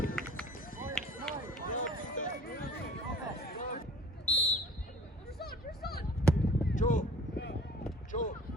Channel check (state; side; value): normal; both; correlation 0.47